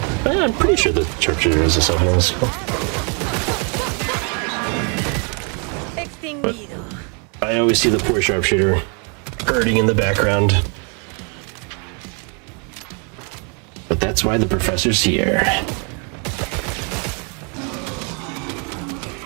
I'm pretty sure the sharpshooter has a self-healing skill. But I always see the poor sharpshooter hurting in the background. But that's why the professor's here.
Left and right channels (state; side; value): quieter; left; 36.7 dB